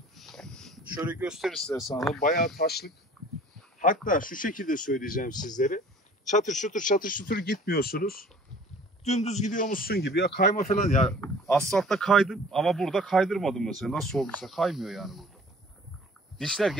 Şöyle gösterirler sana. Bayağı taşlık. Hatta şu şekilde söyleyeceğim sizlere. Çatır çutur gitmiyorsunuz. Dümdüz gidiyormuşsun gibi. Ya kayma falan ya. Asfaltta kaydım ama burada kaydırmadım mesela. Nasıl olduysa kaymıyor yani burada. Dişler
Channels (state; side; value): normal; both; correlation 0.49